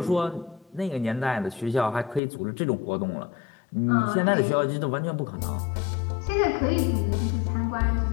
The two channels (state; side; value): drops out; right; at 2.2 s